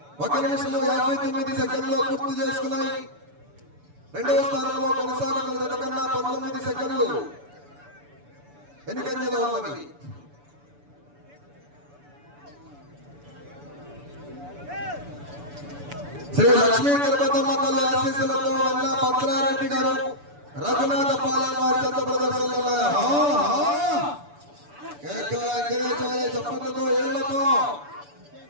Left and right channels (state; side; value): late; left; 6.9 ms